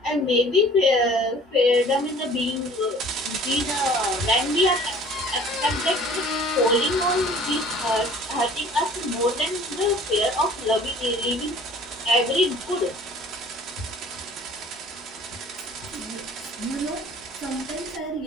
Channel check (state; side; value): normal; both; correlation 0.49